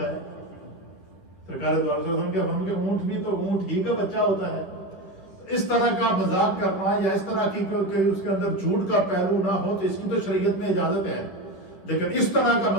ہے. سرکار دو علیہ وسلم کے فرمان کہ اونٹ بھی تو اونٹ ہی کا بچہ ہوتا ہے. اس طرح کا مذاق کرنا یا اس طرح کی کہ اس کے اندر جھوٹ کا پہلو نہ ہو تو اس کی تو شریعت میں اجازت ہے, لیکن اس طرح کا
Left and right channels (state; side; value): late; right; 10 ms